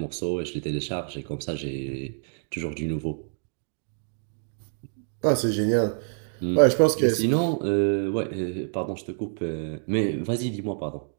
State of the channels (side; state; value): left; silent; 60 dB below the other